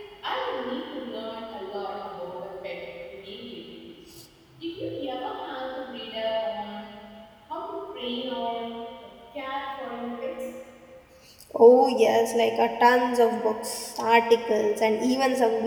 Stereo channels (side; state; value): both; identical; correlation 1.00